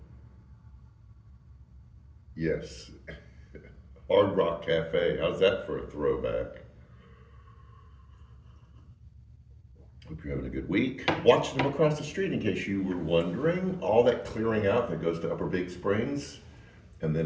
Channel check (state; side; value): identical; both; correlation 1.00